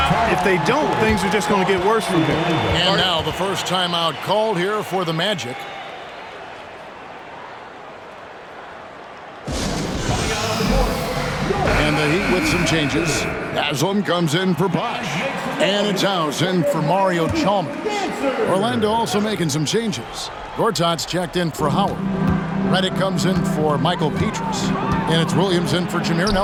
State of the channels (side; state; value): both; identical; correlation 1.00